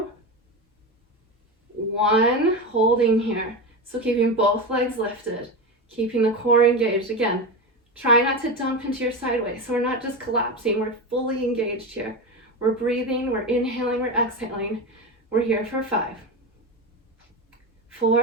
1. Holding here. So keeping both legs lifted, keeping the core engaged. Again, try not to dump into your sideways. So we're not just collapsing, we're fully engaged here. We're breathing, we're inhaling, we're exhaling. We're here for 5,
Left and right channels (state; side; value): normal; both; correlation 0.20